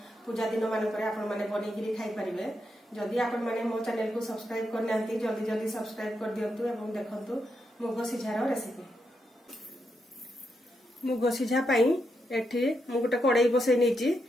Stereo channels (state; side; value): normal; both; correlation 0.83